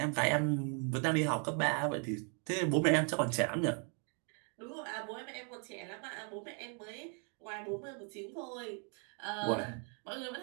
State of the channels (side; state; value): left; quieter; 40.0 dB